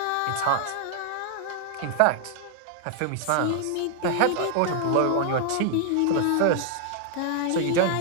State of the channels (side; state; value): both; different; correlation 0.00